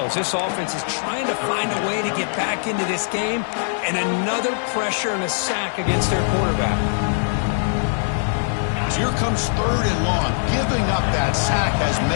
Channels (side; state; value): right; silent; 65 dB below the other